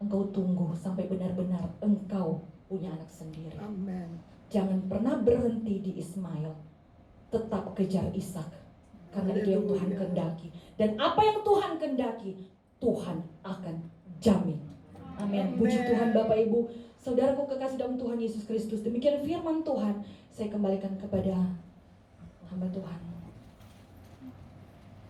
tunggu sampai benar-benar engkau punya anak sendiri. Amen. Jangan pernah berhenti di Ismail. Tetap kejar Ishak. Karena itu yang Tuhan kehendaki. Dan apa yang Tuhan kehendaki, Tuhan akan jamin. Amin. Puji Tuhan Bapak Ibu. Saudaraku kekasih dalam Tuhan Yesus Kristus. Demikian firman Tuhan. Saya kembalikan kepada hamba Tuhan.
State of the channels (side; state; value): both; identical; correlation 1.00